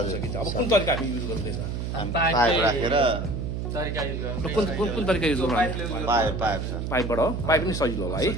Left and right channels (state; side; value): noise; right; hum, 3 dB below the sound